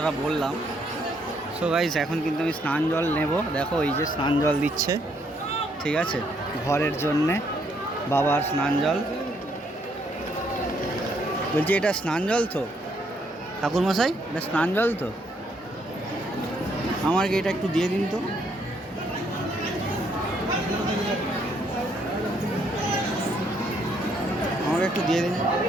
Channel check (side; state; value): both; normal; correlation 0.71